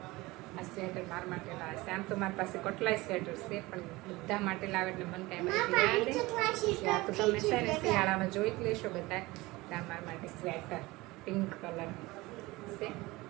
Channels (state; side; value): quieter; left; 21.0 dB